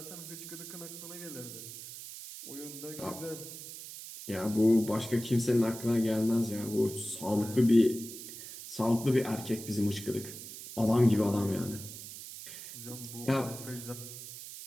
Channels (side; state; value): right; noise; hiss, 12 dB below the sound